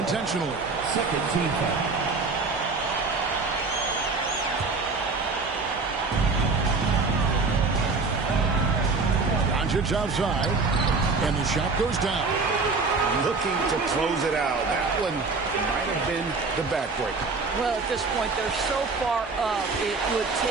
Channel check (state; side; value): quieter; left; 4.1 dB